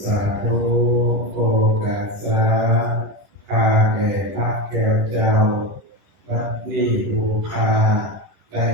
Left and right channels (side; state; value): left; late; 11 ms